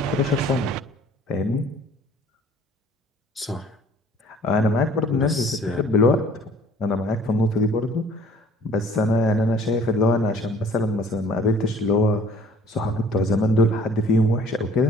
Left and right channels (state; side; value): normal; both; correlation 0.53